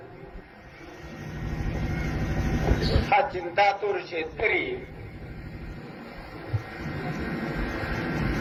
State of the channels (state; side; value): identical; both; correlation 1.00